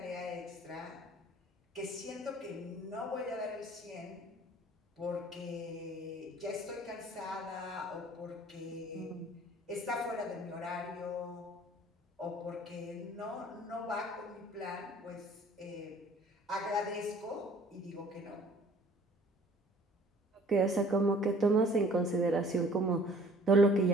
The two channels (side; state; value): both; normal; correlation 0.53